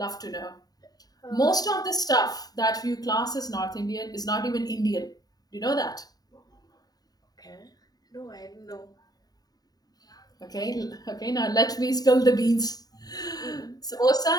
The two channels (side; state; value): right; late; 0.19 ms